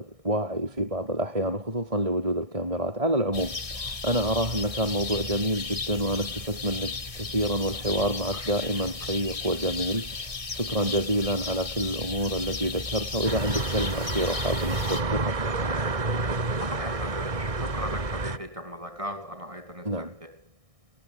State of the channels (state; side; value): late; left; 1.6 ms